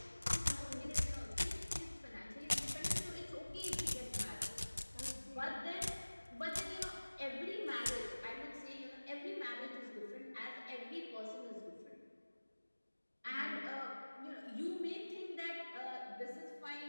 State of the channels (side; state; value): both; inverted; correlation -1.00